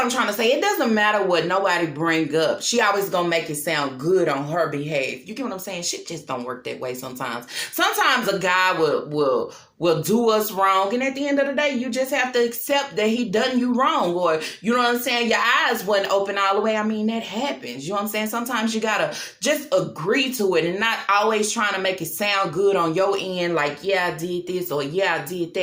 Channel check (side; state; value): both; identical; correlation 1.00